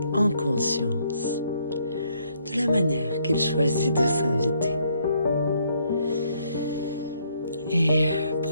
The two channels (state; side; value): inverted; both; correlation -0.70